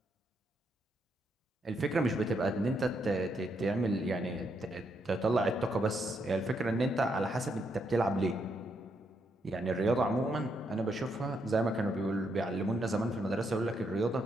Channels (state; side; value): normal; both; correlation 0.77